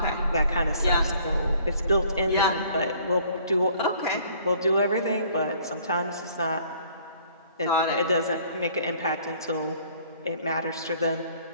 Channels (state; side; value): inverted; both; correlation -0.58